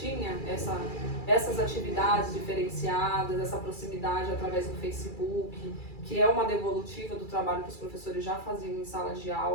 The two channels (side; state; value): right; late; 2.3 ms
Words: essas atividades diferenciadas, essa proximidade através do Facebook, que é uma devolutiva do trabalho que os professores já faziam em sala de